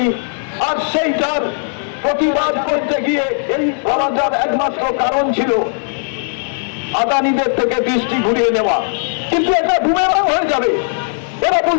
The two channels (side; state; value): right; silent; digital silence